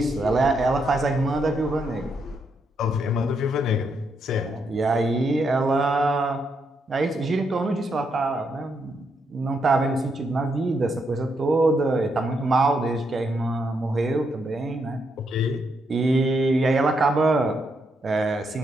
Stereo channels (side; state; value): both; normal; correlation 0.79